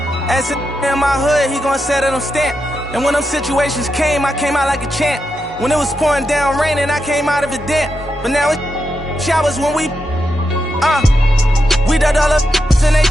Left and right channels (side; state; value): both; normal; correlation 0.86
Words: As in my hood, he gon' set it on stamp. And when them situations came, I came out like a champ. When it was pouring down raining, I came out of it damp. But now it's showers when we done all the in they